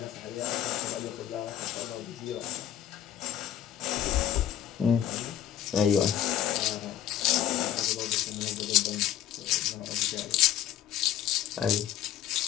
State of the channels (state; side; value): quieter; right; 10.9 dB